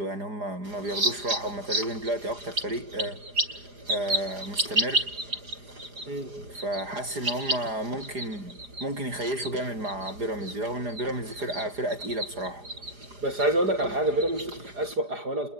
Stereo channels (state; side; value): late; left; 4.9 ms